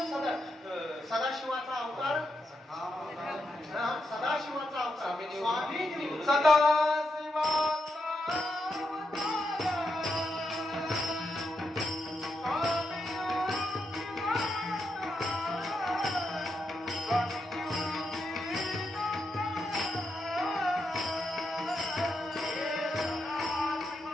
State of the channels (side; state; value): both; normal; correlation 0.84